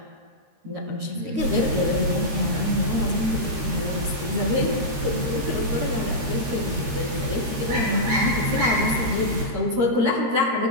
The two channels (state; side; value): late; left; 13 ms